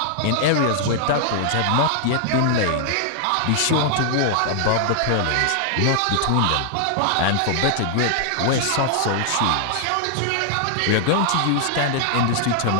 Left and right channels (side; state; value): both; different; correlation -0.01